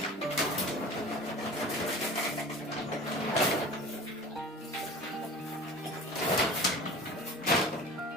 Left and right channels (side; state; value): both; normal; correlation 0.39